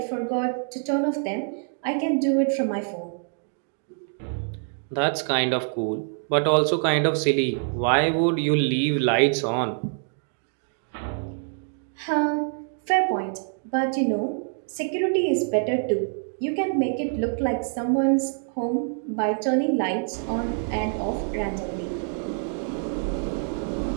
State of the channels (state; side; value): silent; left; 61 dB below the other